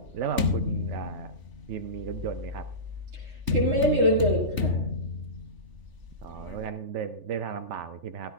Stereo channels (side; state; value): left; late; 3.4 ms